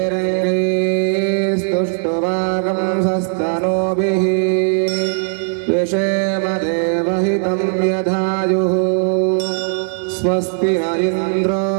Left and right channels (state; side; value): silent; left; digital silence